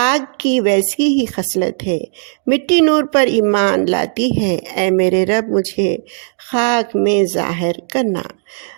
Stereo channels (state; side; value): silent; left; digital silence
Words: کی ویسی ہی خصلت ہے، مٹی نور پر ایمان لاتی ہے، اے میرے رب مجھے خاک میں ظاہر کرنا۔